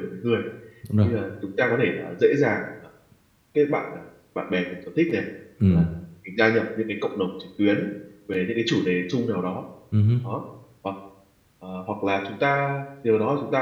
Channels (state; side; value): identical; both; correlation 1.00